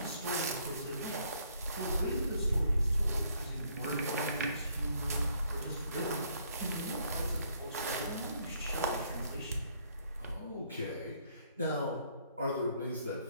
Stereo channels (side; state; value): both; inverted; correlation -0.67